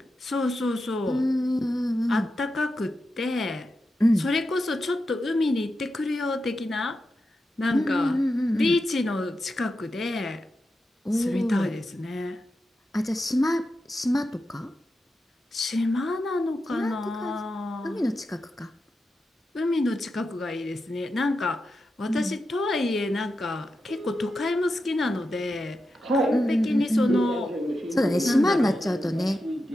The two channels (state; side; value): normal; both; correlation 0.89